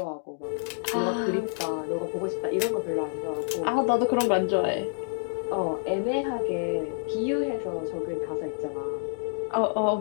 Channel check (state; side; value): silent; right; digital silence